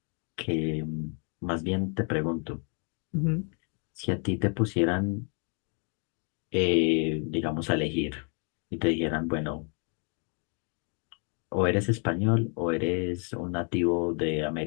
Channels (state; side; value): quieter; right; 39.4 dB